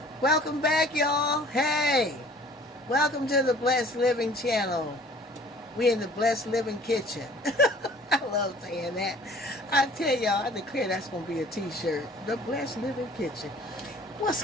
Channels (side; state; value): both; normal; correlation 0.51